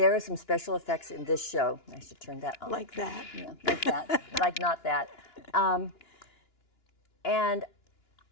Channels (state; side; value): late; right; 2.9 ms